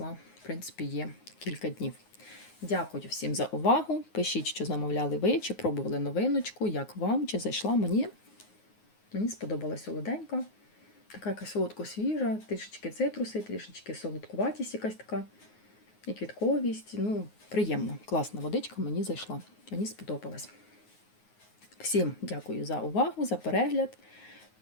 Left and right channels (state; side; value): late; right; 9.5 ms